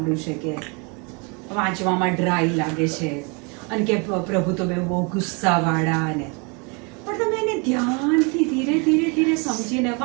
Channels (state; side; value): quieter; left; 32.1 dB